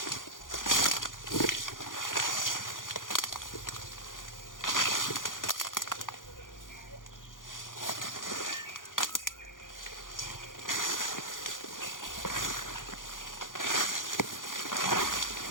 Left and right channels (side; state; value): right; late; 0.89 ms